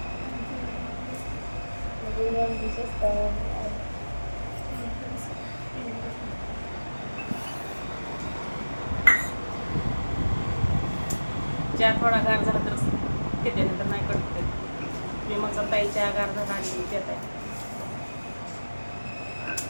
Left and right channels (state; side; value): inverted; both; correlation -1.00